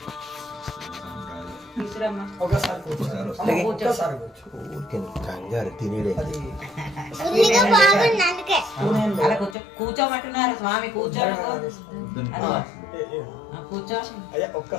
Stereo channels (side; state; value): right; drops out; at 9.6 s